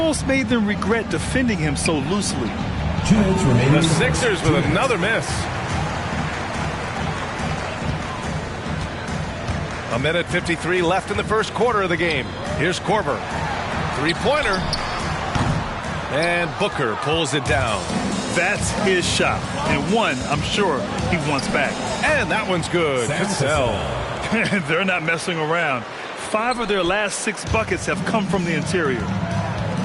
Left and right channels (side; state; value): both; identical; correlation 1.00